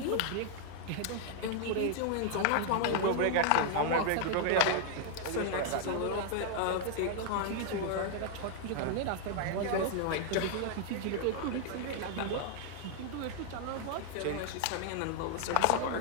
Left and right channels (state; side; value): different; both; correlation 0.00